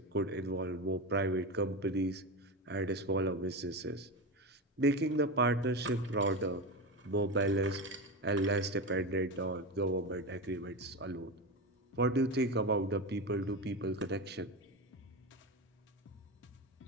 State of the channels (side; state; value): both; normal; correlation 0.20